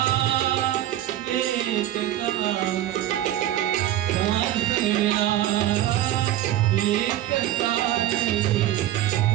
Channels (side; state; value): left; quieter; 13.1 dB